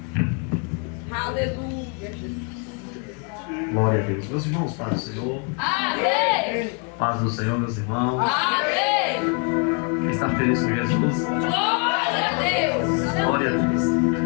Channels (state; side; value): quieter; right; 37.6 dB